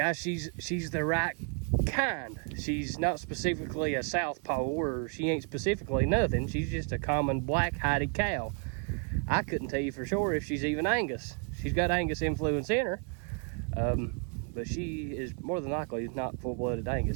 she's the right kind. She's not specifically a southpaw, or she ain't specifically nothing. She's just a common black-hided cow. I couldn't tell you for sure if she's even Angus. She's got Angus influence in her, but she is more than likely not full-blooded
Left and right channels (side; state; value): left; quieter; 38.9 dB